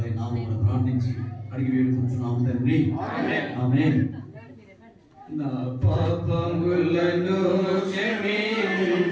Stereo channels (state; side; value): identical; both; correlation 1.00